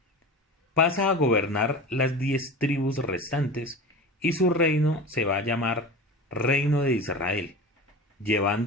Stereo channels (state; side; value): normal; both; correlation 0.32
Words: pasa a gobernar las 10 tribus restantes y su reino se va a llamar Reino de Israel,